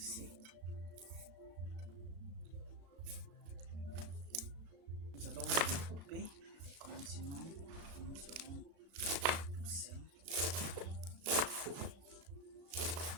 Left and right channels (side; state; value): left; late; 35 ms